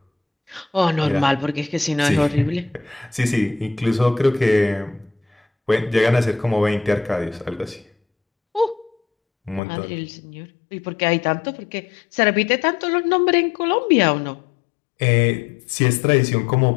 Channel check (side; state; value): right; drops out; at 9.6 s